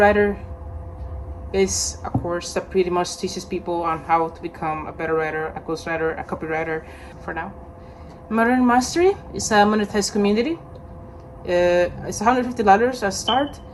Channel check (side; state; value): both; identical; correlation 1.00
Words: is a course that pretty much teaches people on how to become a better writer, a ghostwriter, a copywriter for now. Modern Mastery is a monetized community. It's $150 at start,